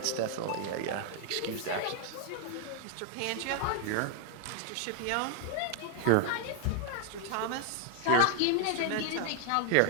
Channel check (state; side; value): different; both; correlation 0.00